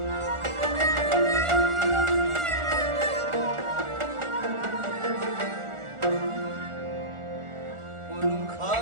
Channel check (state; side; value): late; left; 1.4 ms